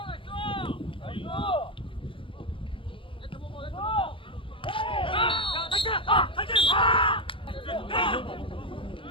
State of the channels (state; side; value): late; right; 0.25 ms